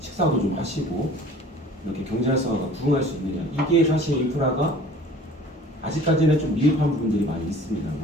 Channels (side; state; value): both; normal; correlation 0.47